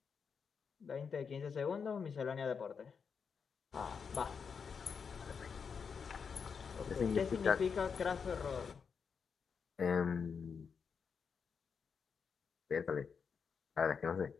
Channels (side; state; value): right; quieter; 6.1 dB